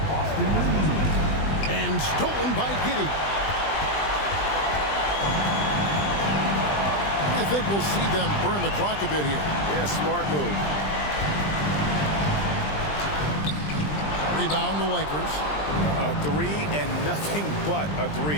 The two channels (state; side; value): late; right; 20 ms